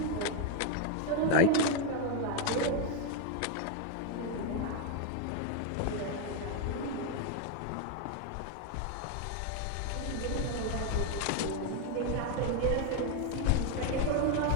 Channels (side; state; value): both; different; correlation 0.01